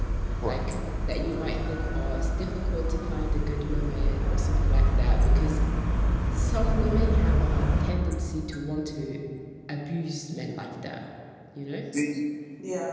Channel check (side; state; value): both; identical; correlation 1.00